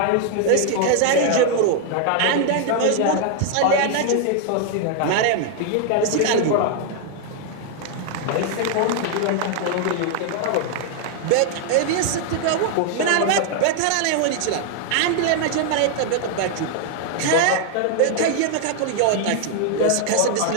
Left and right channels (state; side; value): different; both; correlation 0.00